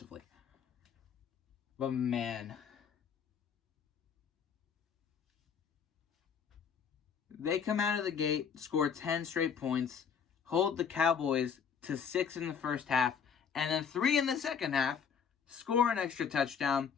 But man, they come out of the gate, score 10 straight points, hold the Cowboys to 6 in the first half, and then 3 in the second half, score an extra touchdown.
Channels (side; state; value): right; quieter; 7.1 dB